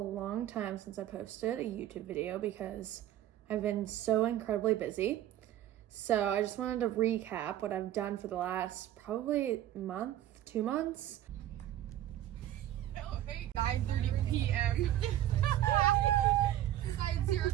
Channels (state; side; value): quieter; left; 12.7 dB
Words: time since I posted a YouTube video because I've been so incredibly busy. So I just wanted to recap what I've done for the last probably month, 2 months. Oh, hey, 9:30 p.m. Besides 0